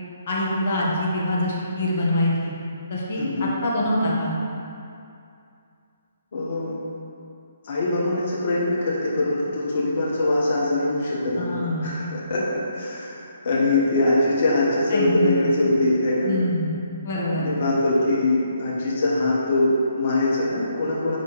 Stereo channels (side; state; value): both; inverted; correlation -0.72